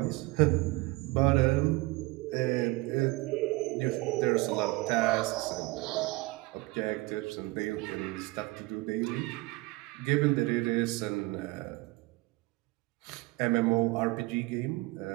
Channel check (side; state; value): left; quieter; 21.8 dB